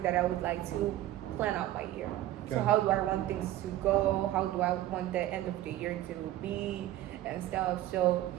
that I would like to plan out my year. Okay. So how do I want things to go? How do I want the end of the year to be and stuff? So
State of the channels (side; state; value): left; quieter; 14.4 dB